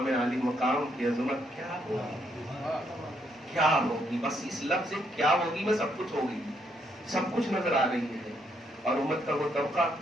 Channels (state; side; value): normal; both; correlation 0.74